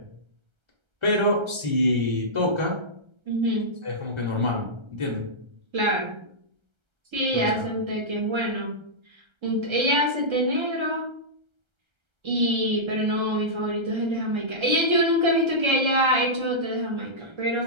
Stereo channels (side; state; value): left; late; 1.3 ms